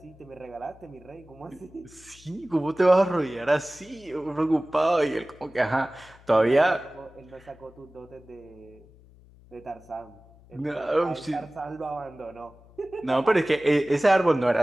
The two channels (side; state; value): left; noise; hum, 25 dB below the sound